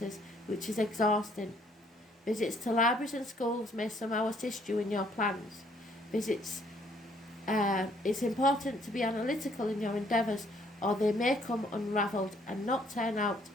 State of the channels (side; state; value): both; normal; correlation 0.65